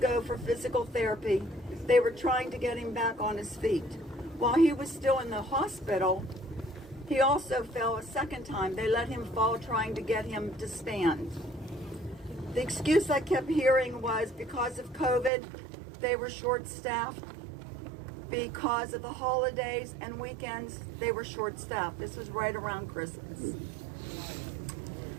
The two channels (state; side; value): drops out; left; at 15.3 s